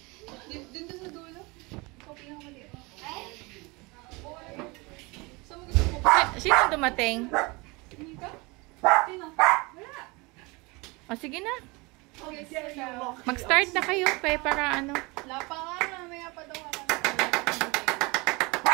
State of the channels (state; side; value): quieter; left; 25.9 dB